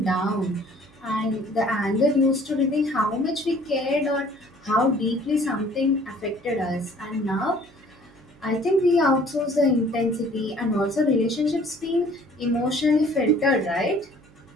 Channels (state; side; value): noise; right; hum, 28 dB below the sound